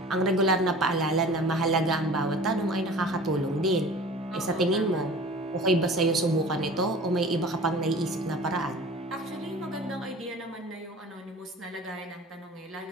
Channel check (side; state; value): both; normal; correlation 0.42